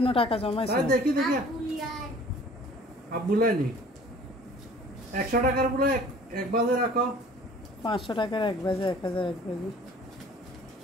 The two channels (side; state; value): both; normal; correlation 0.50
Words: টাকা জমাইছো দেখি দেখি আব্বুলাই নি 100 টাকার বলে এক বাজে রাখো 500 টাকার এক বাজে 1000 এক বাজে